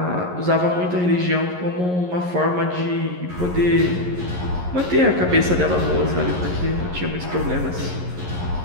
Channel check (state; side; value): late; left; 11 ms